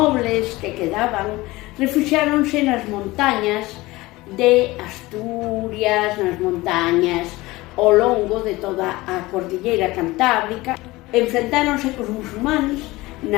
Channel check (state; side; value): quieter; right; 20.1 dB